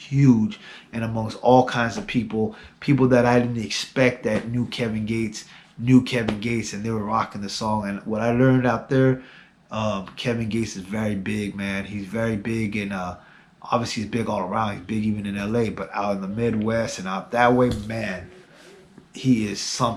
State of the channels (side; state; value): both; identical; correlation 1.00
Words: and amongst all kinds of people, people that I didn't expect that knew Kevin Gates, and they were rocking the song. And what I learned out there, Kevin Gates is very big, man. He's very big, and obviously he's big all around. He's big even in LA, but out in the Midwest and out that way, man, he is